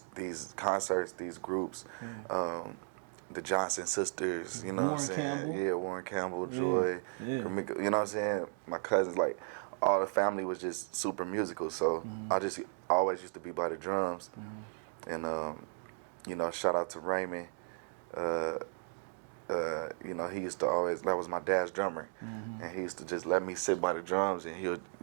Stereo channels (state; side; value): silent; left; 54 dB below the other